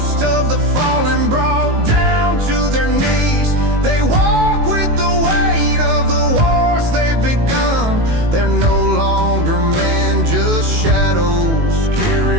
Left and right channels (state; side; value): late; left; 18 ms